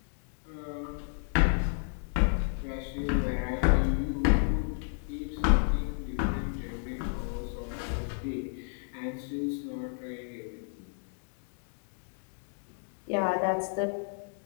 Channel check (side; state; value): right; silent; 57 dB below the other